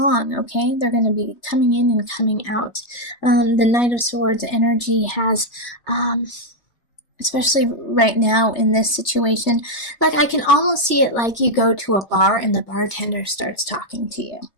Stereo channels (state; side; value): late; right; 3.3 ms